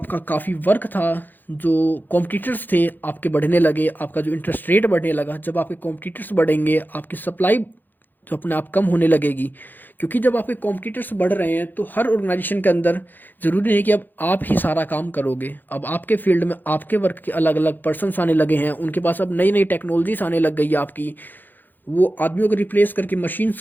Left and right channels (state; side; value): late; right; 0.088 ms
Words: काफ़ी वर्क था, जो कॉम्पिटिटर्स थे आपके बढ़ने लगे, आपका जो इंटरेस्ट रेट बढ़ने लगा। जब आपके कॉम्पिटिटर्स बढ़ेंगे आपकी सप्लाई जो अपने आप कम होने लगेगी, क्योंकि जब आपके कॉम्पिटिटर्स बढ़ रहे हैं तो हर ऑर्गेनाइजेशन के अंदर ज़रूरी नहीं कि अब आप ही सारा काम करोगे। अब आपके फील्ड में आपके वर्क के अलग अलग पर्सनस आने लगे हैं, उनके पास अब नई नई टेक्नोलॉजीज आने लग गई है आपकी, वो आदमियों को रिप्लेस करके